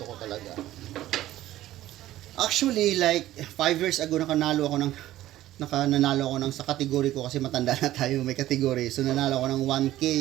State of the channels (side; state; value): left; quieter; 14.4 dB